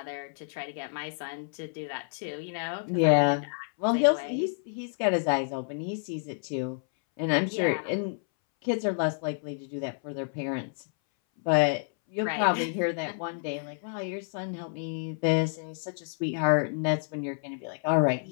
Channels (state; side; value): silent; right; 58 dB below the other